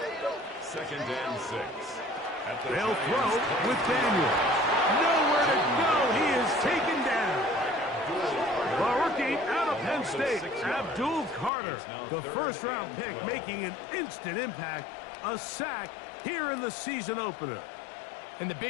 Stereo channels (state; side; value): drops out; right; at 11.5 s